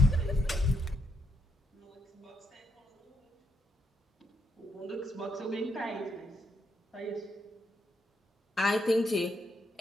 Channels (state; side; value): normal; both; correlation 0.78